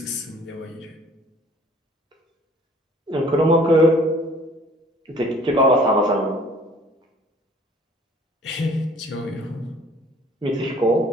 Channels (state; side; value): normal; both; correlation 0.54